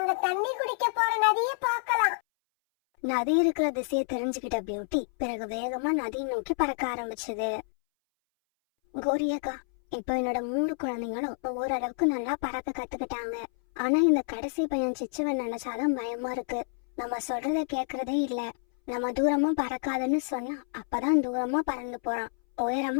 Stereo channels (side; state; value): right; silent; 59 dB below the other